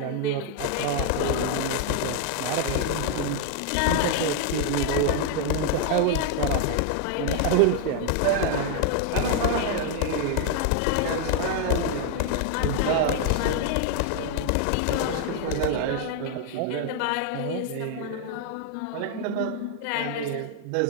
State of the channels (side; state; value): both; different; correlation 0.00